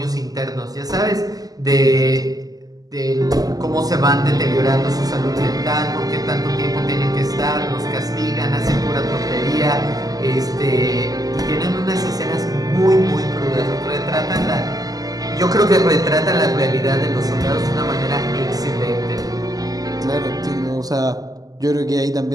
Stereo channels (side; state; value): left; late; 0.18 ms